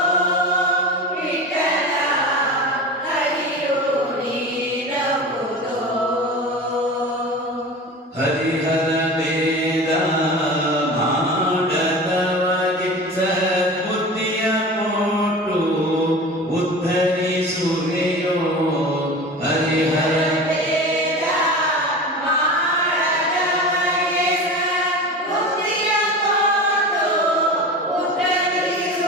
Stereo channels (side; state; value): both; normal; correlation 0.32